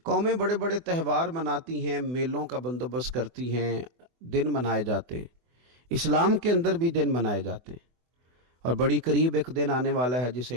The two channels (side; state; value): left; late; 24 ms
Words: قومیں بڑے بڑے تہوار مناتی ہیں، میلوں کا بندوبست کرتی ہیں، دن منائے جاتے ہیں. اسلام کے اندر بھی دن منائے جاتے ہیں اور بڑی قریب ایک دن آنے والا ہے جسے